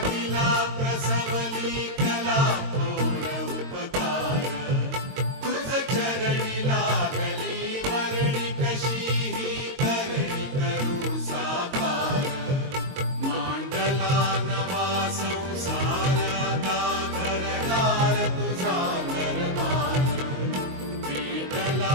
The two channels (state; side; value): late; left; 22 ms